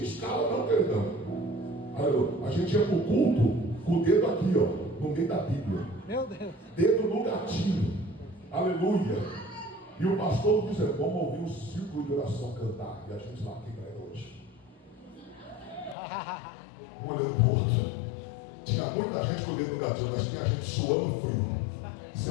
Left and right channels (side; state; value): right; drops out; at 16.0 s